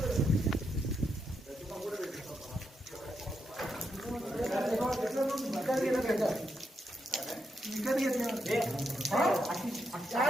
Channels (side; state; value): both; normal; correlation 0.82